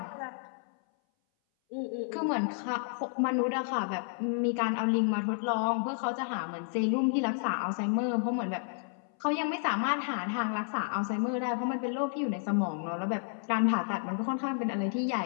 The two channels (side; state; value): right; silent; 57 dB below the other